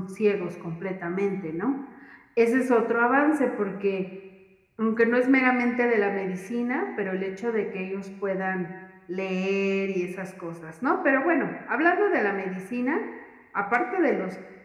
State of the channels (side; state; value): both; identical; correlation 1.00